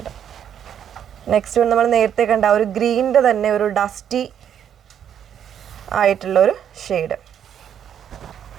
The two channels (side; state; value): left; quieter; 9.2 dB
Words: Next one നമ്മൾ നേരത്തെ കണ്ട ഒരു ഗ്രീനിൻ്റെ തന്നെ ഒരു ഡസ്റ്റി ആയിട്ടുള്ളൊരു ഷെയ്ഡ്